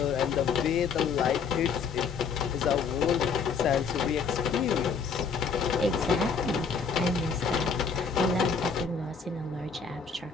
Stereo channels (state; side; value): quieter; right; 5.7 dB